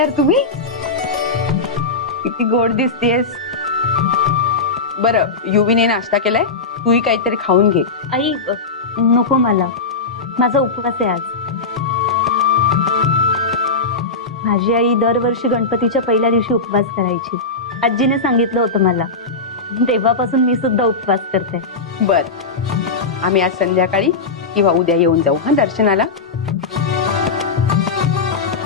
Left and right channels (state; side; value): quieter; right; 4.0 dB